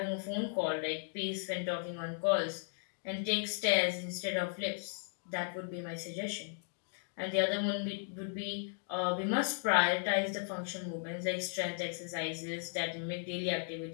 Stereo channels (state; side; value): silent; right; digital silence